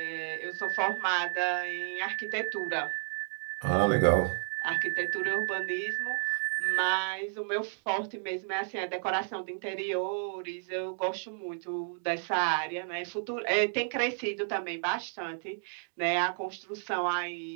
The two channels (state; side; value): silent; left; digital silence